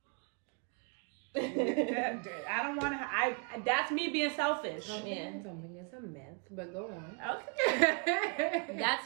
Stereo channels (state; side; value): quieter; left; 35.7 dB